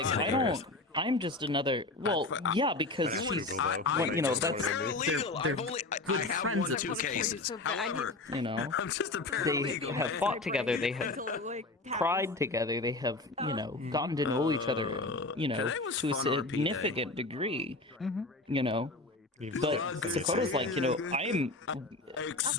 lying. I'm just another. Well, yeah, because That's she's, legal, though. when, you know, that's Paralegal. they're I've only good I have friends won at 2 this point. cases. So bad. I However, You know, I'm just a they paralegal. have fought together. They have cried together. They have, you know, gotten to know each other, you know, to a significant degree. You know, but Dakota's like, you know, I'm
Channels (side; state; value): right; quieter; 3.1 dB